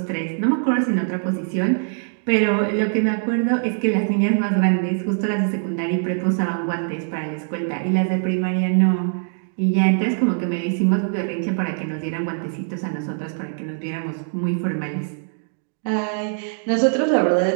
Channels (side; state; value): left; silent; digital silence